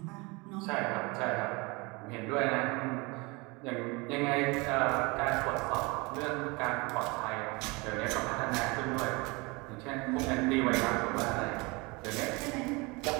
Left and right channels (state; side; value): quieter; left; 26.3 dB